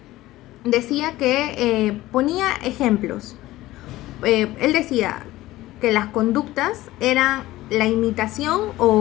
decía que ponía ejemplos. Él decía que las conductas eran la imitación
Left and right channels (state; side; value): quieter; right; 16.8 dB